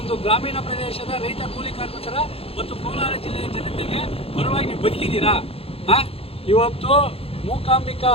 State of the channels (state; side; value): late; right; 0.28 ms